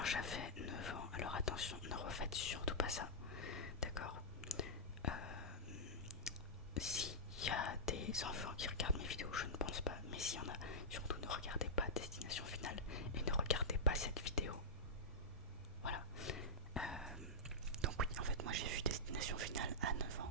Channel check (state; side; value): normal; both; correlation -0.11